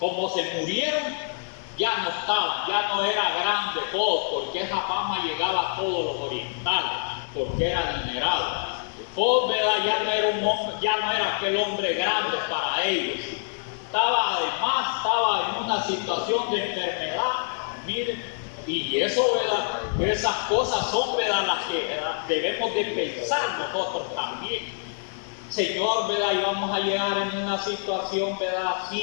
se murieron, ya no estaban, ya no era grande Job, porque esa fama llegaba a todos los orientales, porque era adinerado. Job, ¿verdad? Ya no era un hombre, ya no era aquel hombre grande para ellos. Estaba en una situación de enfermedad, miren. Y eso, ¿verdad? Esas cosas son, ¿verdad? Las que, ¿verdad? Debemos de pensar nosotros también. Señor, ¿verdad? Y vamos a llegar en una situación, ¿verdad?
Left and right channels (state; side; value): silent; right; 61 dB below the other